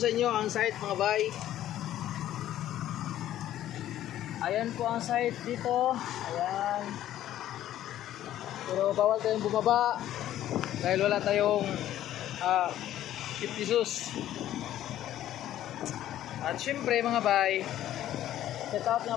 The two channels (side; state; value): right; quieter; 12.6 dB